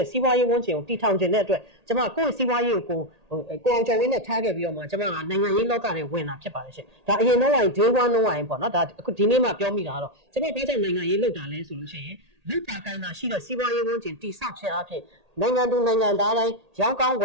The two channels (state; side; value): late; left; 1.8 ms